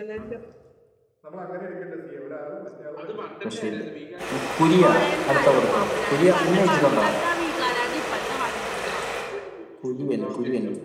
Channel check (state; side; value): identical; both; correlation 1.00